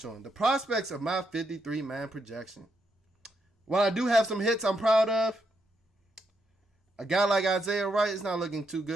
on, the prospects of my 53-man projection. While I do have some hits I'm proud of, a guy like Isaiah Wright is not looking too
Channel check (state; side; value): normal; both; correlation 0.79